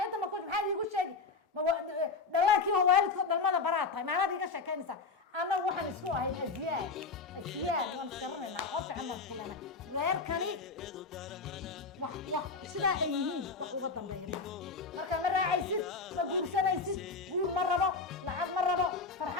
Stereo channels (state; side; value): quieter; right; 4.3 dB